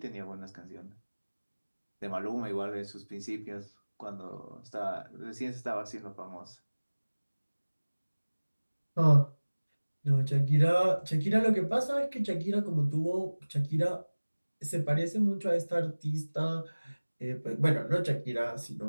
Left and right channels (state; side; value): inverted; both; correlation -1.00